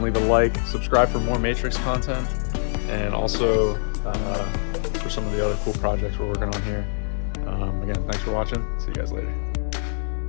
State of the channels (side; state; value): right; silent; digital silence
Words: leave a like, subscribe for more Matrix content, and also for some of the other cool projects we're working on here. Again, thanks for watching. See you guys later.